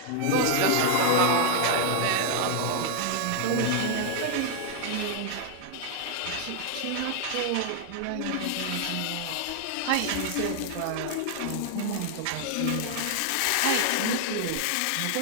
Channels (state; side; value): different; both; correlation 0.00